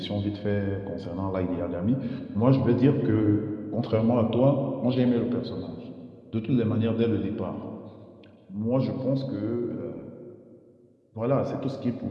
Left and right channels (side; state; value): both; identical; correlation 1.00